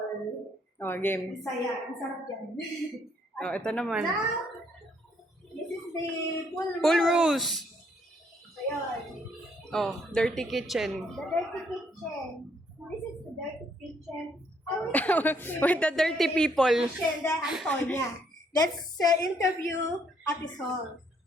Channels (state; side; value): normal; both; correlation 0.69